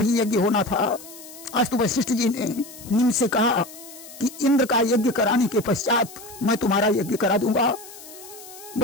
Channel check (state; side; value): noise; left; hiss, 17 dB below the sound